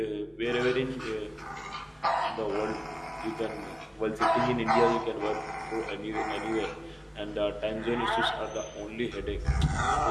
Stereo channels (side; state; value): both; identical; correlation 1.00